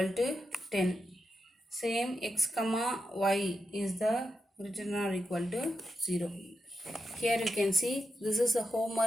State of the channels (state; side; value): normal; both; correlation 0.86